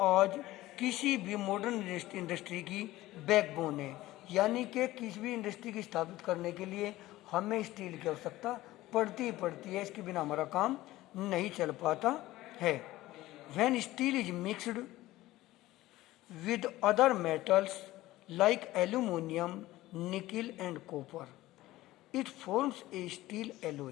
आज किसी भी मॉडर्न इंडस्ट्री की बैकबोन है, यानी कि किसी भी इंडस्ट्री की स्थापित करने के लिए हमें स्टील की आवश्यकता पड़ती है। इसके बिना हमारा काम नहीं चल पाता है। When steel is mixed with other metals like aluminium, nickel and copper, it forms a steel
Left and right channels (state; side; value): quieter; right; 16.8 dB